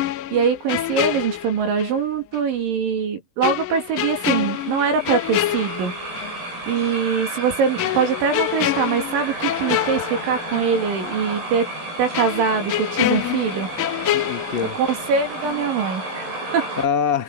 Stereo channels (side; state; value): left; late; 11 ms